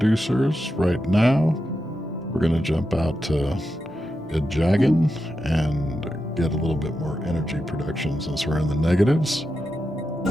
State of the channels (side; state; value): both; normal; correlation 0.88